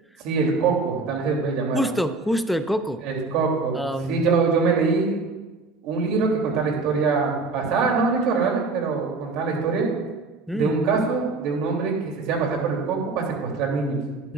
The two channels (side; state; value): left; quieter; 3.7 dB